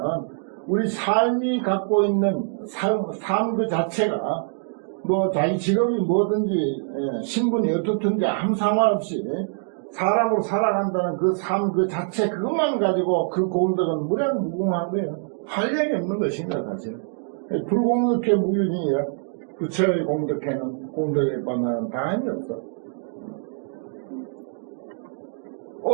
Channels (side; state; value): left; silent; digital silence